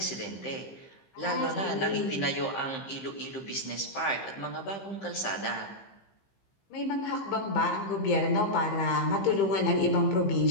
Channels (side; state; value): right; late; 15 ms